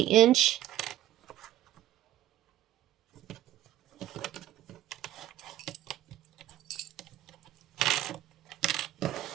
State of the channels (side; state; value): left; quieter; 13.3 dB